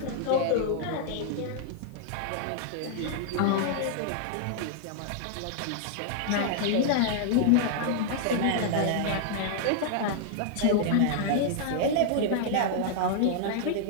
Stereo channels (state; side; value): different; both; correlation -0.01